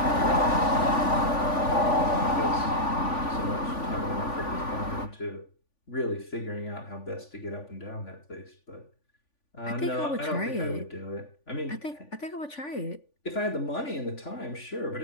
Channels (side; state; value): right; late; 3.5 ms